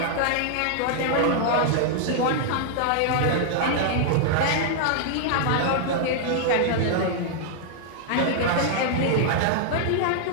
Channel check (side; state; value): both; different; correlation -0.01